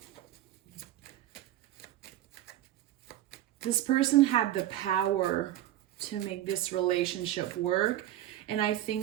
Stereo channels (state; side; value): quieter; left; 13.3 dB